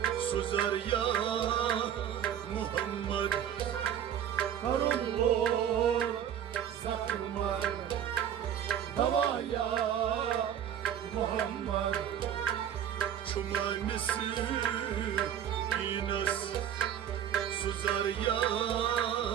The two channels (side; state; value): left; quieter; 9.7 dB